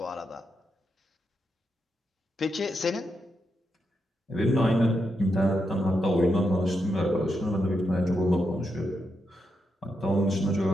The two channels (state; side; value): normal; both; correlation 0.84